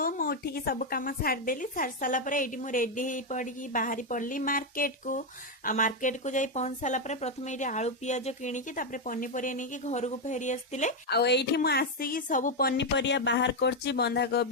मु उठिकी सब काम सारिदेली सारी सारा पर एटी मु रेडी हो पड़ी बाहरी पड़ली मार्केट को जाई पहुंच सारा पर प्रथम ये आलू पियाज किणिकी तापर पनीपरिया नहीं घर को फेरी आसते आईठी मु आसिकी सब पनीपरिया बाहर करची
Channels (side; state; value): both; normal; correlation 0.04